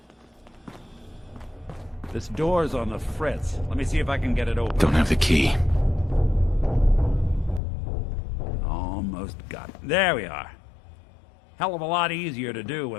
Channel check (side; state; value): right; drops out; at 7.6 s